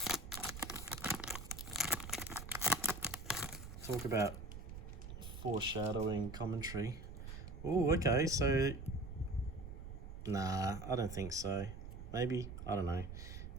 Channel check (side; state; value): right; noise; rumble, 10 dB below the sound